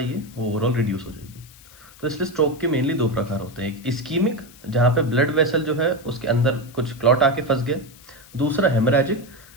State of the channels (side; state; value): left; noise; hiss, 23 dB below the sound